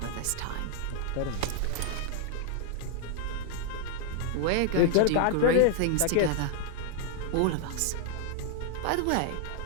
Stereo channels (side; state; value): both; different; correlation 0.00